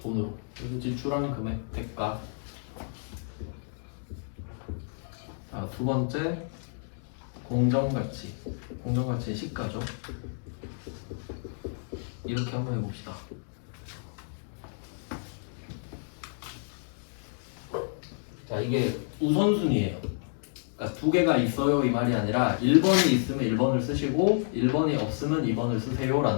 돈으로. 그래서 지출하는 금액 대가. 자, 두 번째 공정가치. 공정가치의 시가죠. 이렇게 한번 해봅시다. 자, 이게 우선순위예요. 그러니까 두 개가 있어요 이 말이 아니라 1번이 있으면 1번을 쓰시고 1번이 없으면 2번을 쓰세요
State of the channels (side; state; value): right; silent; digital silence